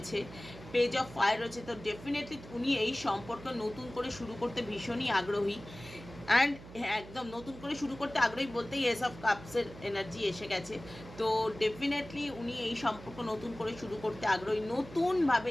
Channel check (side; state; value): right; noise; hum, 16 dB below the sound